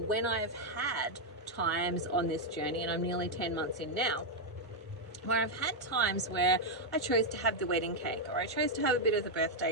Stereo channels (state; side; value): normal; both; correlation -0.01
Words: I've had times on this journey, and I'm nearly 10 months in now, where I've had times where I chose to have the wedding cake, or I chose to have a bit of the birthday